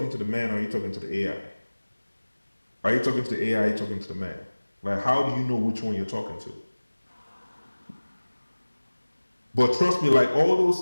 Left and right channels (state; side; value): inverted; both; correlation -1.00